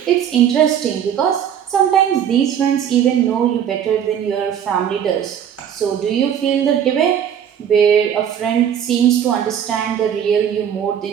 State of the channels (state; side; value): quieter; left; 9.0 dB